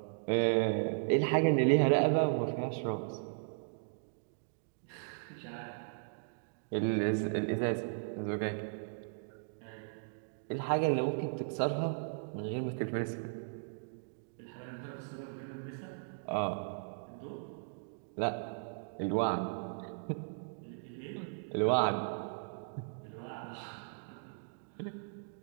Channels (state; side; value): silent; left; digital silence